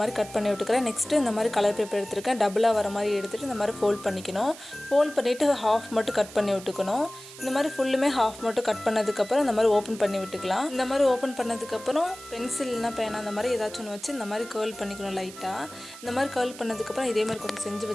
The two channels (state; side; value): noise; right; hiss, 16 dB below the sound